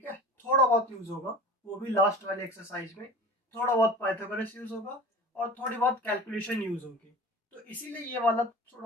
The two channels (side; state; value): both; normal; correlation 0.37